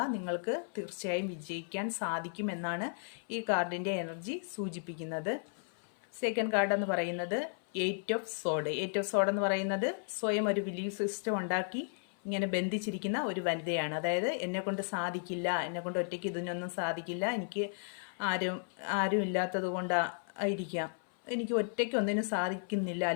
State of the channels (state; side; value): silent; right; 55 dB below the other